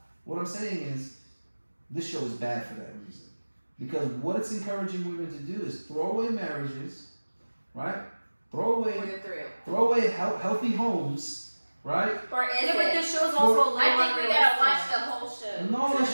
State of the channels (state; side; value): inverted; both; correlation -1.00